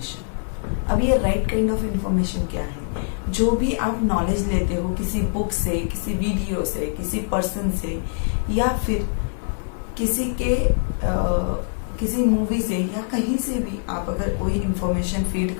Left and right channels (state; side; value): silent; right; digital silence